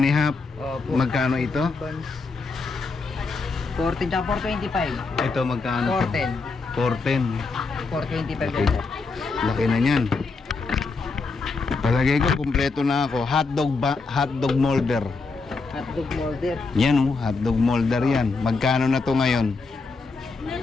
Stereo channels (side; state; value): right; quieter; 4.2 dB